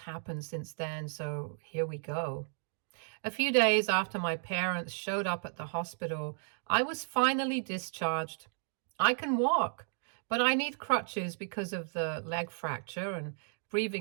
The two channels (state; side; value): silent; left; 55 dB below the other